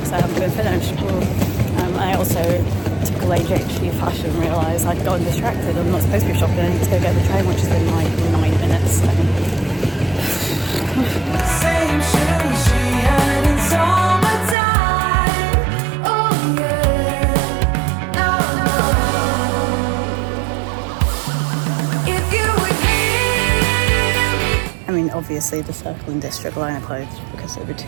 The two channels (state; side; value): drops out; left; at 14.6 s